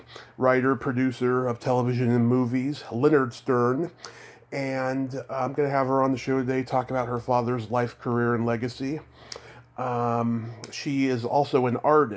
writer, producer of television and movies, Leonard Stern. And I'm going to have her on the show today talk about her father's life, career, and legacy. She is also an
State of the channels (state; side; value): identical; both; correlation 1.00